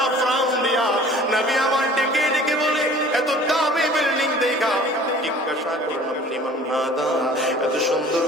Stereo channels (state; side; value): normal; both; correlation 0.48